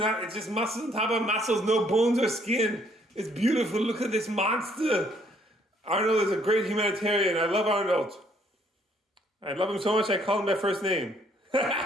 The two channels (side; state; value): both; normal; correlation 0.66